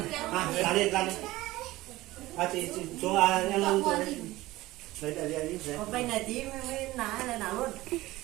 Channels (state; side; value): quieter; left; 18.1 dB